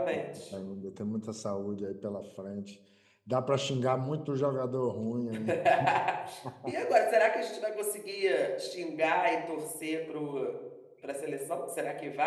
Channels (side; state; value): both; identical; correlation 1.00